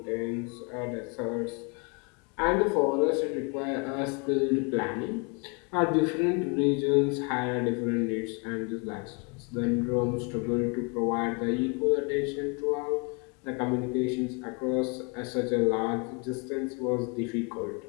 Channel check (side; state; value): right; quieter; 33.1 dB